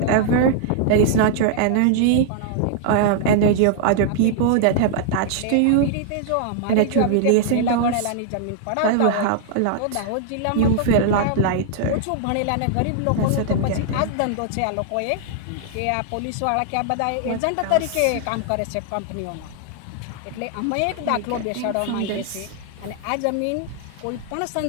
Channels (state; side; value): different; both; correlation -0.01